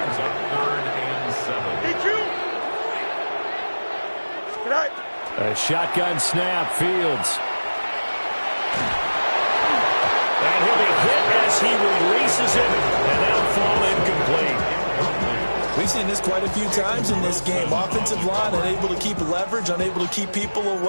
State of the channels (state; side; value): inverted; both; correlation -1.00